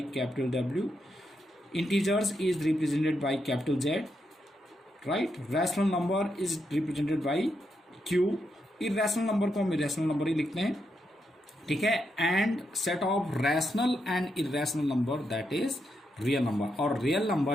capital W, integers is represented by capital Z, right. Rational number is represented by Q, irrational number को हम इरेशनल नंबर ही लिखते हैं, ठीक है। And set of rational and irrational number that is real number, और real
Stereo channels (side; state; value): both; normal; correlation 0.82